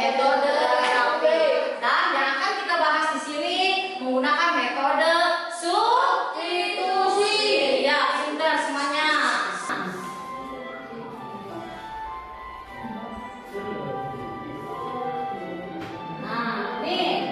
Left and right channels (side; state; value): both; identical; correlation 1.00